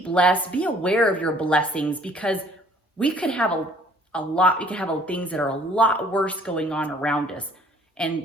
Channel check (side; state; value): both; normal; correlation 0.57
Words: blessed. Be aware of your blessings because we could have we could have things that are a lot worse going on around us. And